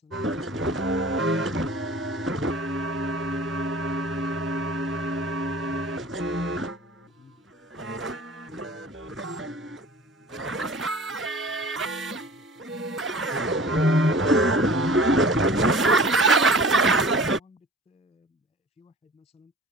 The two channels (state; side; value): normal; both; correlation 0.43